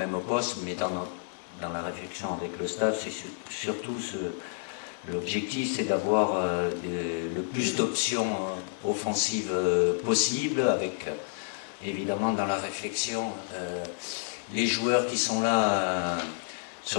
poste, mais dans la réflexion avec le staff, c'est surtout l'objectif, c'est d'avoir le plus d'options offensives possibles, avec évidemment dans la réflexion les joueurs qui sont là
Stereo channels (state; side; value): silent; right; digital silence